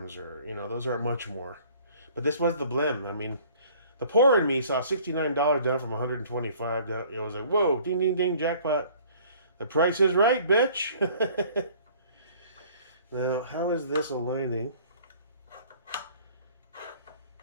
or, those aren't much more. But this was the blim. I mean, the poor in me saw $69 down from $125 down. It was like, whoa, ding, ding, ding, jackpot. The price is right, bitch. Now, how is this aligning?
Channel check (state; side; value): inverted; both; correlation -0.53